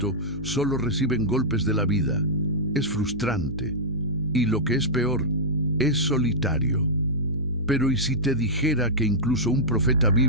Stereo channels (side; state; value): both; normal; correlation -0.10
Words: solo reciben golpes de la vida. Es frustrante y, lo que es peor, es solitario. Pero ¿y si te dijera que incluso un profeta